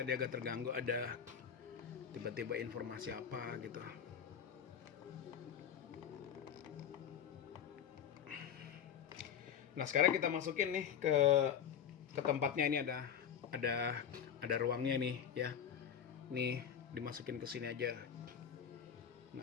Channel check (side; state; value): right; quieter; 8.5 dB